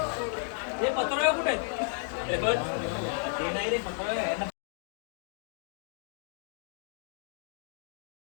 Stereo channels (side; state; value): right; silent; 56 dB below the other